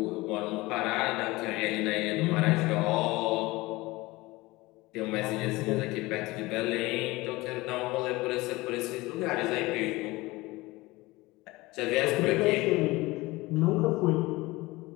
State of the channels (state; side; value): quieter; right; 21.0 dB